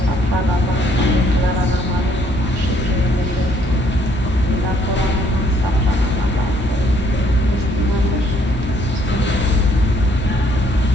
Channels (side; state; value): both; normal; correlation 0.66